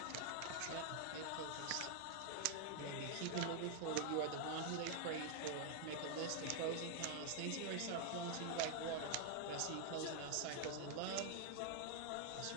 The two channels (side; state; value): both; different; correlation 0.00